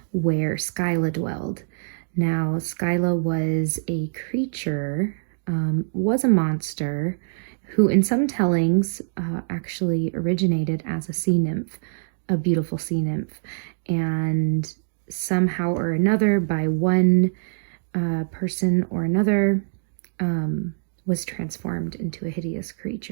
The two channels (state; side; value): silent; left; digital silence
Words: where Scylla dwelled. Now, Scylla was a creature, was a monster, who in some tellings actually originated as a sea nymph, a beautiful sea nymph, and somehow or another, by one person or another, was transformed into a hideous